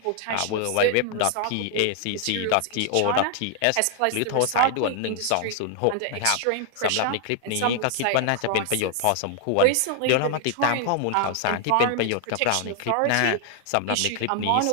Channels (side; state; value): both; different; correlation 0.00